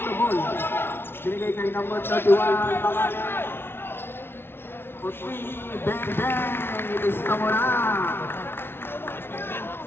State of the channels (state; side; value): late; right; 0.11 ms